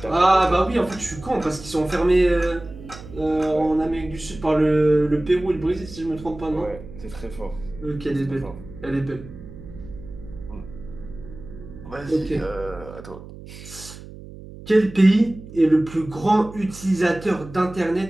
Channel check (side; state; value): right; noise; hum, 15 dB below the sound